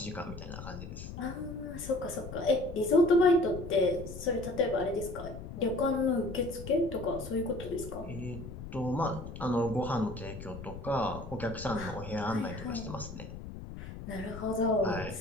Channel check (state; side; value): noise; left; rumble, 11 dB below the sound